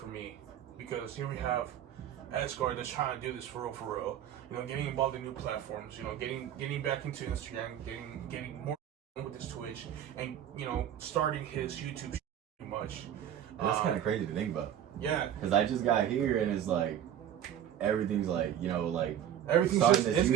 me because here we have Esgarinho that's trying to do this for real. Getting involved in new platforms. Getting back into Instagram, getting more with his Twitch, and starting his YouTube. Pretty much. And that's kind of crazy to think about. Yeah. Because I just got here and it's like everything's like everything's just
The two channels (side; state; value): left; quieter; 10.2 dB